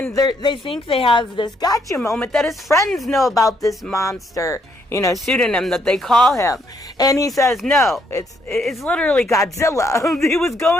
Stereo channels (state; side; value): normal; both; correlation 0.72